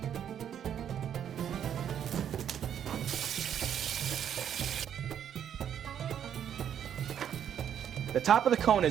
The top of the cone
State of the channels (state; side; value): quieter; left; 9.2 dB